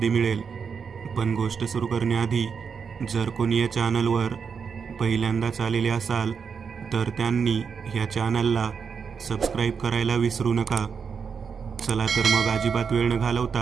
मिळेल. पण गोष्ट सुरू करण्याआधी जर कोणी या चॅनलवर पहिल्यांदाच आलेले असाल तर त्यांनी ह्या चॅनलला सबस्क्राईब करायला विसरू नका. चला तर मग अजिबात वेळ न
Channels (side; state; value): left; quieter; 6.2 dB